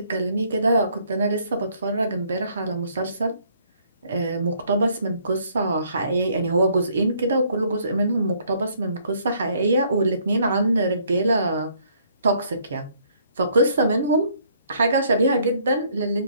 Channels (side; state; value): both; inverted; correlation -0.65